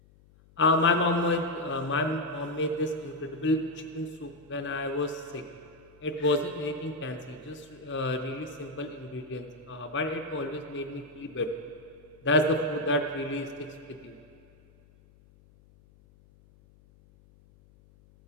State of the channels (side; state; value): left; noise; hum, 27 dB below the sound